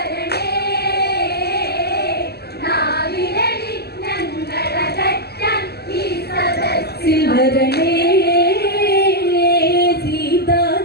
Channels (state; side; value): late; right; 0.47 ms